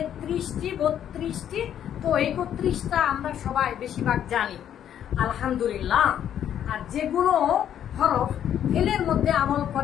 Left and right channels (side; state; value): right; quieter; 10.0 dB